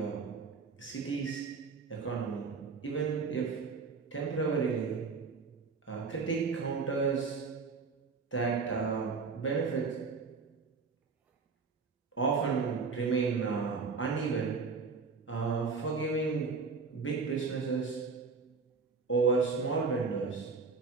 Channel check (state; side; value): quieter; left; 4.8 dB